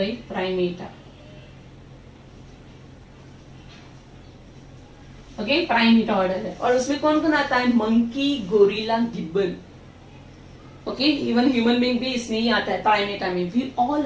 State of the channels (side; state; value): both; identical; correlation 1.00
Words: प्राइमेटा। ओके, प्राइमेटा ऑर्डर है, और उसमें कौन कौन आता है? Monkey, gorilla, gibbon. Okay, even human being भी इसमें ही आता है प्राइमेटा में। We all